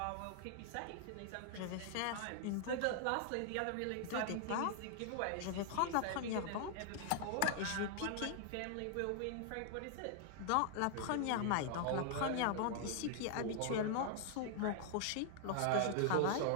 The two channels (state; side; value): different; both; correlation 0.00